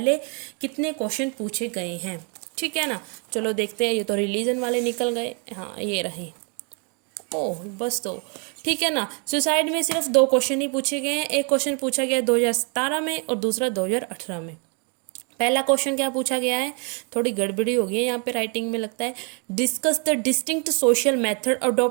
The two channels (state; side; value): quieter; left; 36.7 dB